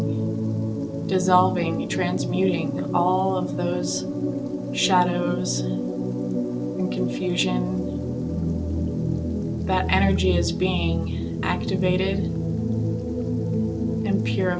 dissolving, transmuting all of those shadows and confusion. That energy is being activated and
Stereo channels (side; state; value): both; identical; correlation 1.00